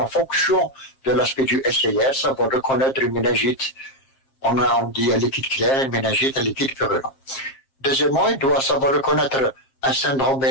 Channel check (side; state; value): right; late; 7.5 ms